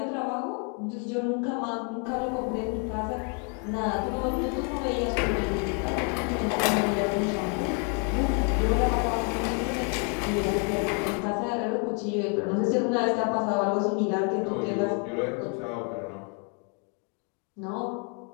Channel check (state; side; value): quieter; right; 38.1 dB